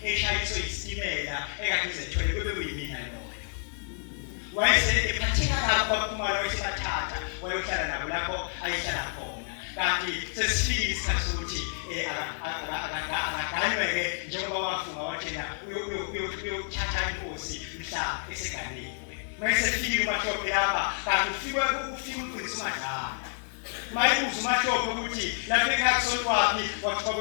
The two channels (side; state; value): right; silent; 58 dB below the other